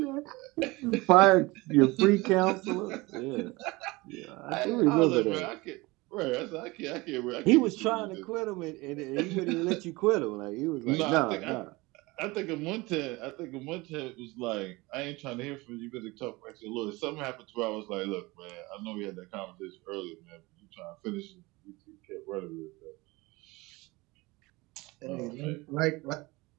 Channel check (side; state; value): left; quieter; 22.8 dB